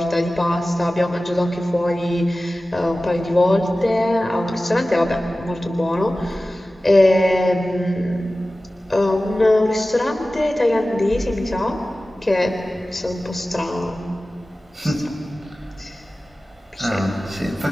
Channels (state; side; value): normal; both; correlation 0.96